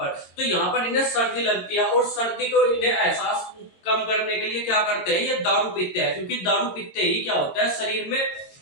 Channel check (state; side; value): late; right; 22 ms